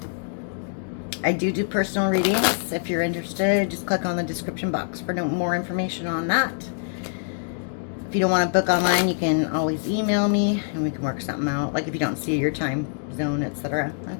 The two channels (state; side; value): silent; right; digital silence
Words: I do personal readings. If you're interested, just click on the description box for more information on that. If you don't want to book online, you can always email me and we can work something out. Like if you don't see your time zone, etc.